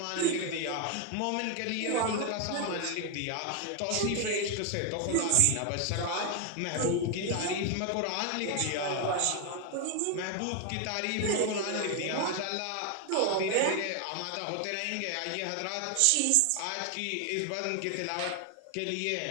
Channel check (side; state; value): both; different; correlation 0.01